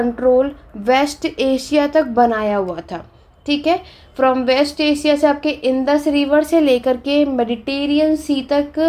वेस्ट एशिया तक बनाया हुआ था। ठीक है, फ्रॉम वेस्ट एशिया से आपके इंडस रिवर से लेकर के मेडिटेरियन सी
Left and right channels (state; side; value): identical; both; correlation 1.00